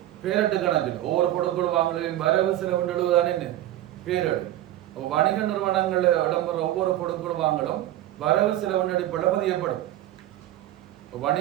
பேரட்டு கணக்கில் ஒவ்வொரு கொடுக்கல் வாங்கலின் வரவு செலவு எழுதுதான் என்ன பேரடு. வணிக நிறுவனங்கள் இடம்பெற ஒவ்வொரு கொடுக்கல் வாங்கலும் வரவு செலவு அடிப்படையில் பதியப்படும்.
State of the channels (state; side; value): quieter; left; 13.9 dB